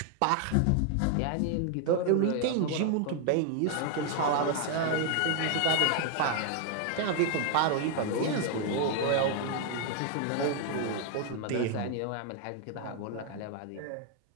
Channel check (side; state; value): both; different; correlation 0.00